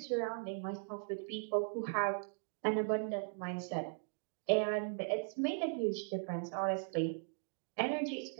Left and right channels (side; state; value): left; silent; digital silence